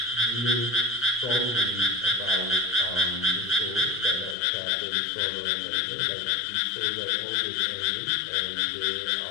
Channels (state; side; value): drops out; right; at 4.4 s